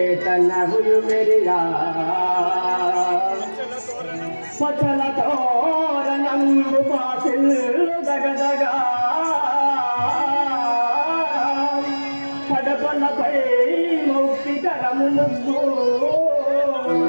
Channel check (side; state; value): both; inverted; correlation -1.00